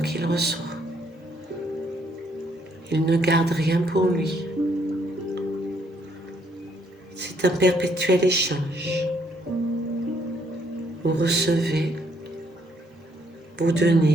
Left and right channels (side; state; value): both; normal; correlation 0.70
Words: reçoit. Il ne garde rien pour lui. C'est un perpétuel échange. Vous recevez, vous